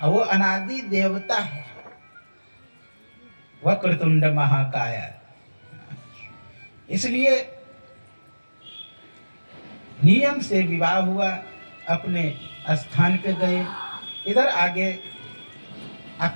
और वो अनादि देवता है। वक्रतुंड महाकाय, इसलिए नियम से विवाह हुआ, अपने स्थान पे गए। इधर आगे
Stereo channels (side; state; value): both; inverted; correlation -1.00